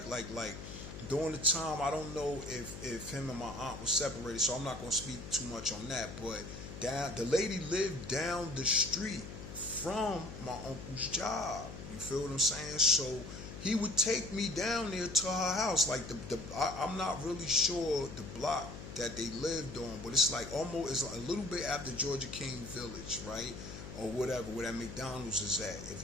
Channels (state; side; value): noise; left; hum, 11 dB below the sound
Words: like during the time, I don't know if him and my aunt was separated, so I'm not going to speak too much on that, but the lady lived down the street from my uncle's job. You feel what I'm saying? So he would take me down there to her house. Like, I'm not really sure the block that they lived on, but it's like almost, it's a little bit after Georgia King Village, right? Or whatever, where that McDonald's is at. If